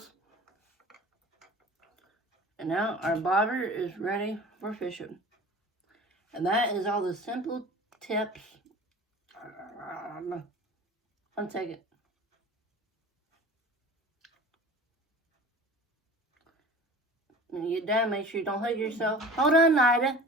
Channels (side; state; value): both; normal; correlation 0.41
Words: And now our bobber is ready for fishing. And that is all the simple tips. 1 second. When you get done, make sure you don't hug yourself. Hold on, Nida.